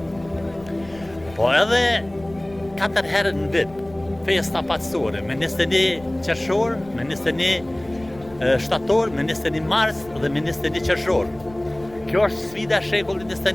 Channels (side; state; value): left; noise; rumble, 22 dB below the sound